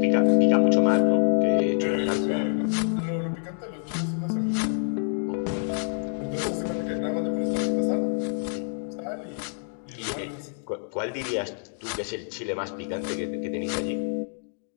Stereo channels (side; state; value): right; silent; 60 dB below the other